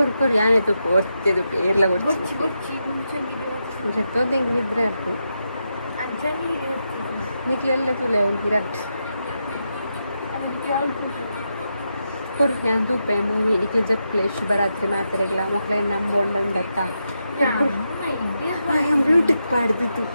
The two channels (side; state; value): both; inverted; correlation -0.85